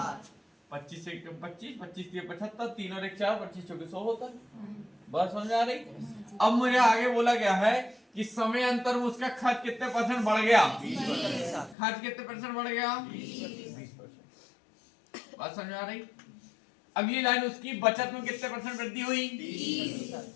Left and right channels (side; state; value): right; drops out; at 11.8 s